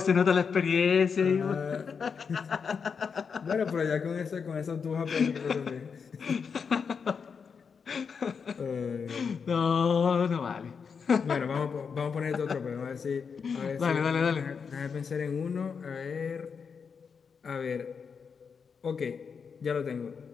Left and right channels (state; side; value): quieter; right; 6.0 dB